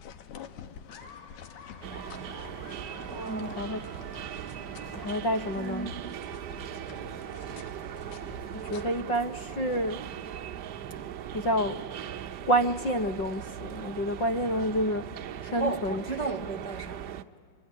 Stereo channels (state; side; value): late; right; 5.6 ms